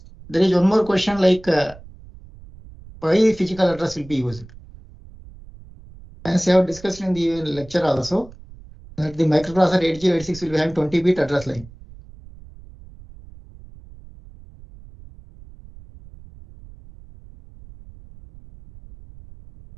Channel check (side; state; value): right; noise; rumble, 20 dB below the sound